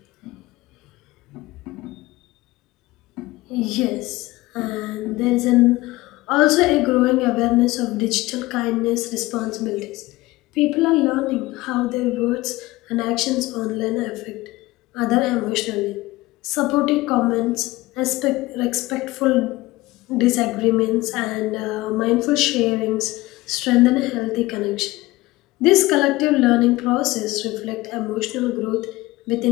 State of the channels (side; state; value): right; quieter; 19.5 dB